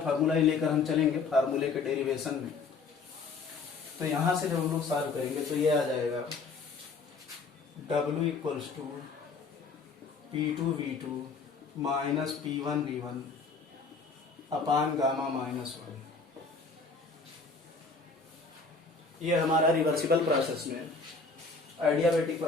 ही लेकर हम चलेंगे फार्मूले के डेरिवेशन में। तो यहां से जब हम लोग सॉल्व करेंगे तो ये आ जाएगा W equals to P2 V2 minus P1 V1 upon gamma minus 1। ये हमारा रिवर्सिबल प्रोसेस में आइडियाबैटिक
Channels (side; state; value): right; quieter; 4.3 dB